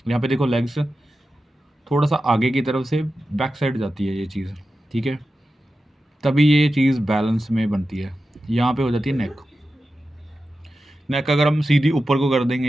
यहाँ पे देखो लेग्स थोड़ा-सा आगे की तरफ से बैक साइड जाती है ये चीज़, ठीक है? तभी ये चीज़ बैलेंस में बनती है। यहाँ पे हो जाती है नेक। नेक अगर हम सीधी ऊपर को कर देंगे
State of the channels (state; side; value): normal; both; correlation 0.92